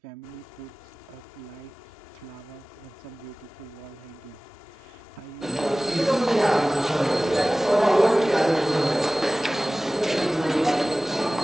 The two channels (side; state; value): both; normal; correlation 0.98